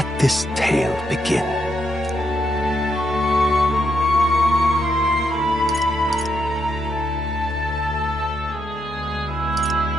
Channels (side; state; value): both; normal; correlation 0.79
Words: this tale begin.